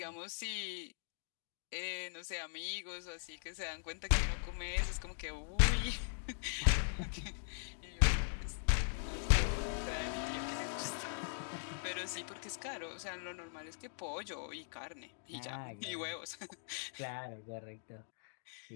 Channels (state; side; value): silent; right; digital silence